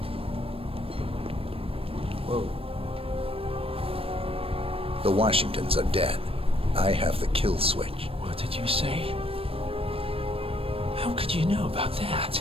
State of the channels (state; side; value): late; left; 0.28 ms